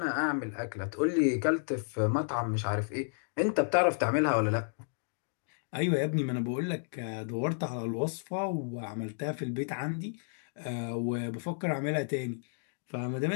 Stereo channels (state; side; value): silent; right; digital silence